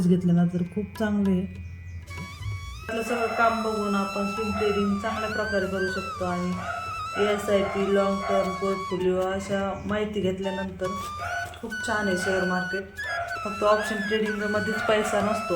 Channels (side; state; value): both; identical; correlation 1.00